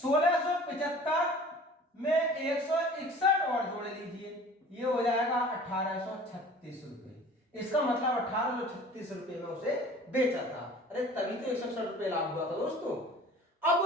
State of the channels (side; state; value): both; normal; correlation 0.45